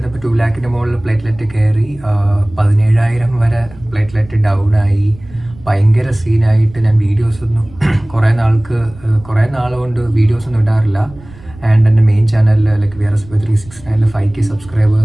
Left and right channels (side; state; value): right; noise; rumble, 21 dB below the sound